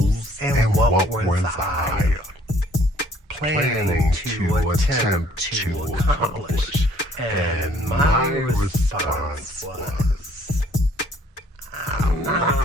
and what was I planning to attempt to accomplish. And my response was, I'm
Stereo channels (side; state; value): both; normal; correlation 0.60